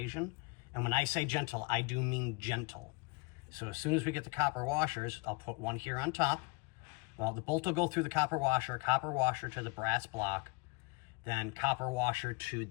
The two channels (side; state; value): right; quieter; 28.7 dB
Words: And when I say gentle, I do mean gentle. So as soon as we get the copper washers, I'll put one here on top. Well, the bolt will go through the copper washer to the brass block, then copper washer to